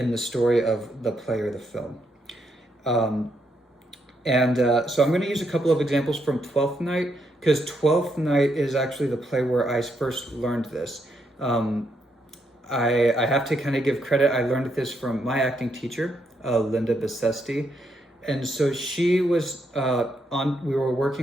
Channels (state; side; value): normal; both; correlation 0.78